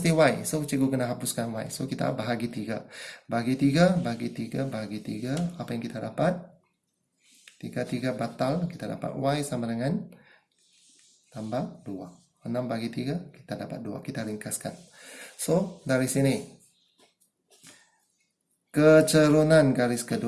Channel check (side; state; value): both; identical; correlation 1.00